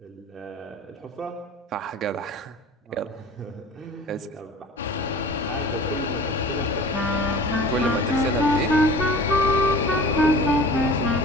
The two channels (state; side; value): normal; both; correlation 0.42